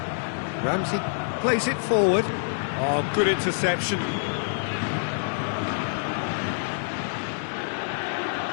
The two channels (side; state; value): right; silent; digital silence